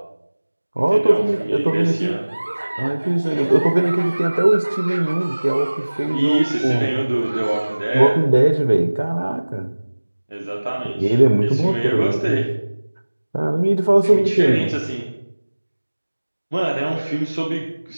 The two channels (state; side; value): inverted; both; correlation -1.00